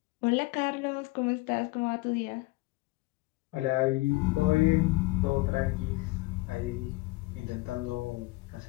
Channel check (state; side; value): quieter; right; 21.6 dB